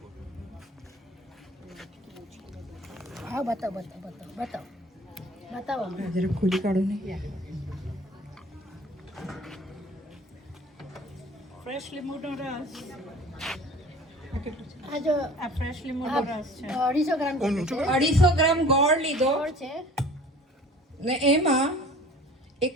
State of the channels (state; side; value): normal; both; correlation 0.46